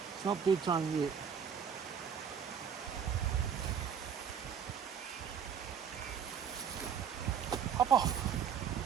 It's not bedtime yet. Hop off.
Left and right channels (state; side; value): quieter; left; 7.5 dB